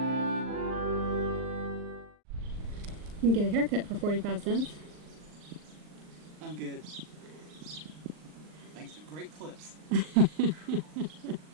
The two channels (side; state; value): left; late; 39 ms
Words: You can get a haircut for 45 cents. I'm good. Thanks to great clips.